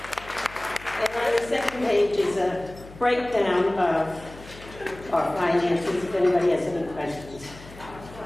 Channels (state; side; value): noise; left; hum, 18 dB below the sound